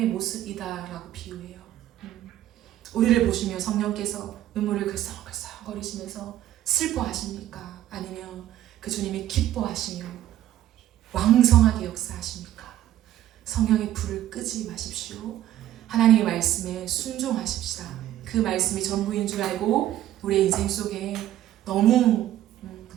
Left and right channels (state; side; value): quieter; left; 13.0 dB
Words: 모습이다라고 비유해요. 우리를 보시며 성령께서 눈물을 글썽글썽거리시면서 슬퍼하십니까? 아니면 그 주님이 기뻐하시며 왕성하게 역사하십니까? 성령의 불을 끄지 마십시오. 하나님의 말씀에 순종하십시다. 그 말씀이 전부인 줄 알고 우리의 인생 속에 너무